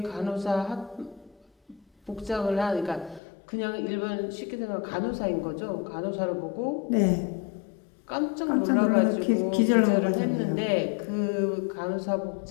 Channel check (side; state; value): right; drops out; at 3.2 s